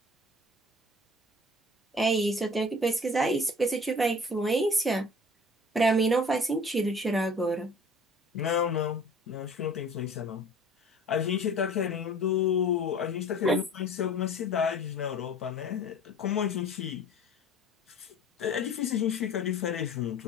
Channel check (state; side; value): normal; both; correlation 0.45